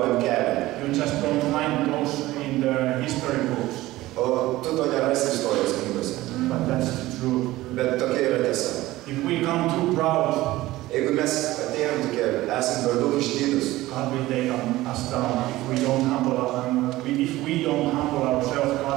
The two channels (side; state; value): left; quieter; 17.3 dB